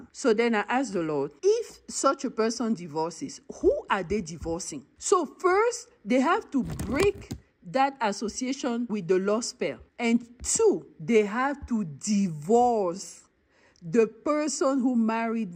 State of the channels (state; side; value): identical; both; correlation 1.00